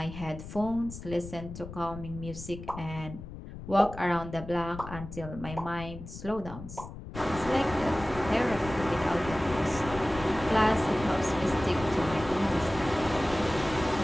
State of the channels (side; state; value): left; noise; rumble, 12 dB below the sound